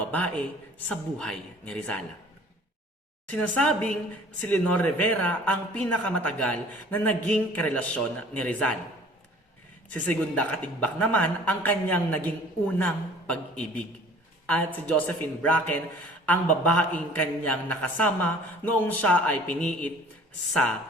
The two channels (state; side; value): normal; both; correlation 0.50